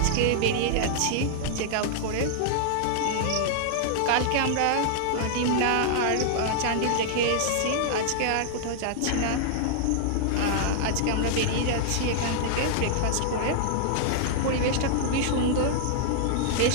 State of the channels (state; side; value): different; both; correlation -0.01